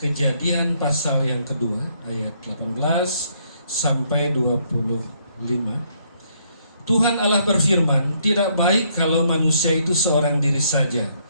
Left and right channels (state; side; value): inverted; both; correlation -0.70